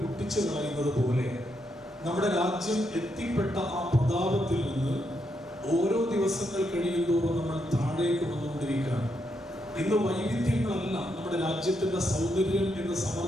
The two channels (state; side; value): normal; both; correlation 0.80